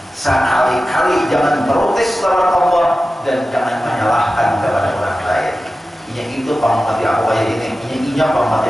Sekali-kali jangan protes lawan Allah dan jangan menyalahkan kepada orang lain. Ini itu pamati aku kayak ini, pamati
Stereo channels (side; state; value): both; normal; correlation 0.94